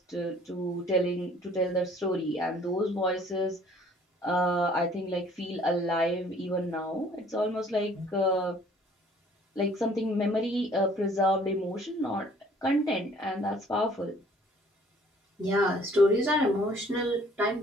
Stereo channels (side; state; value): both; normal; correlation 0.56